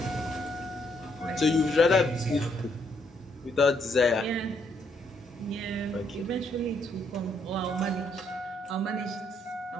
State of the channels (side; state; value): both; normal; correlation 0.73